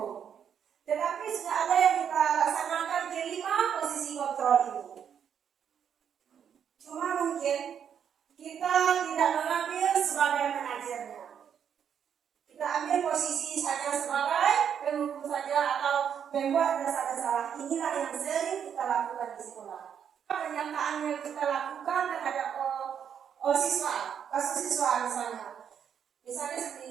Tetapi sudah ada yang kita laksanakan kelima posisi kontrol ini. Cuma mungkin kita tidak mengambil sebagai manajernya. Kita ambil posisi saja sebagai penghukum saja atau membuat rasa bersalah. Inilah yang sering kita lakukan di sekolah. Pernyataan yang kita lakukan terhadap siswa, kasus siswa misalnya seperti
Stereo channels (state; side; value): quieter; left; 8.2 dB